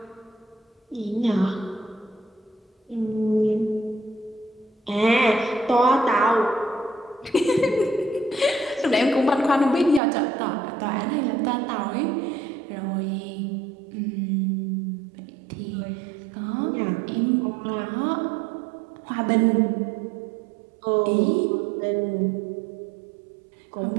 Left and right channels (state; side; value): drops out; left; at 10.0 s